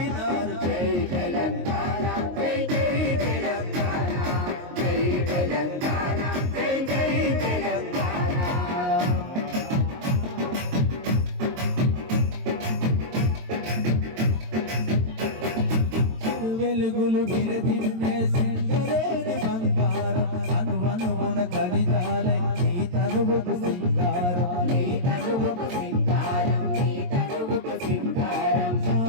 జై తెలంగాణ జై జై తెలంగాణ జై తెలంగాణ జై జై తెలంగాణ వెలుగులు విరదిన్నే సింగరేణి బంగారం అనువనువున ఖనిజాలై నీ తనువుకు సింగారం నీ తనువుకు సింగారం నీ తనువుకు సింగారం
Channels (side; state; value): left; late; 22 ms